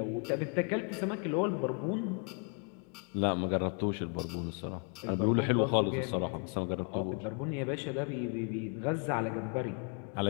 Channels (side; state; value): right; quieter; 38.7 dB